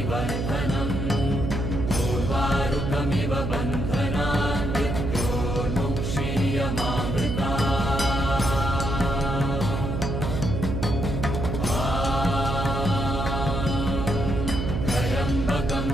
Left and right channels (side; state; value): right; noise; hum, 2 dB below the sound